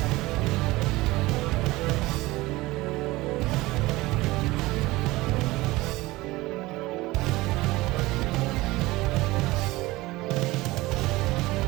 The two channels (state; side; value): quieter; left; 19.8 dB